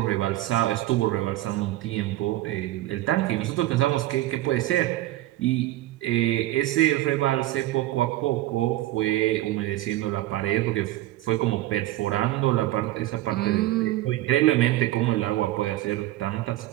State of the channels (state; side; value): quieter; left; 15.9 dB